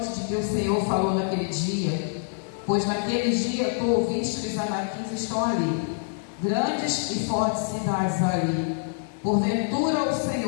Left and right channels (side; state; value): right; silent; digital silence